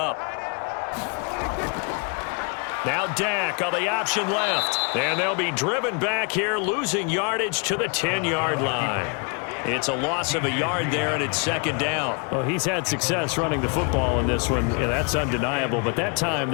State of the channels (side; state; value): right; quieter; 35.7 dB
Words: Now Dak on the option left. And they'll be driven back here, losing yardage to the 10-yard line. It's a loss of a yard there, and it's 2nd down. Well, he's had success running the football in this one. Yeah, that's undeniable. But that time,